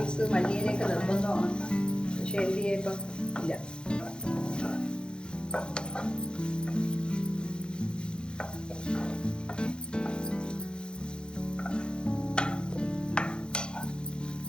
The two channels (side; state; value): right; late; 0.049 ms